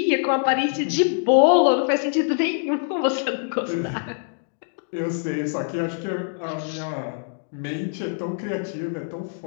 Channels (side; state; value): right; silent; digital silence